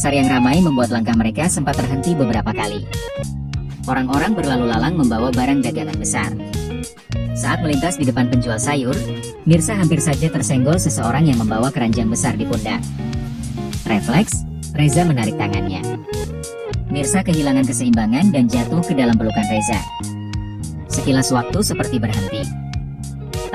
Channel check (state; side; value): identical; both; correlation 1.00